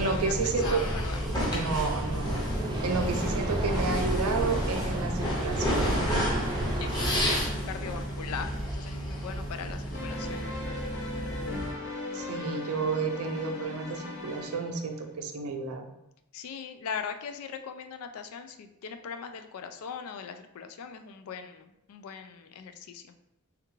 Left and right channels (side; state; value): both; normal; correlation 0.33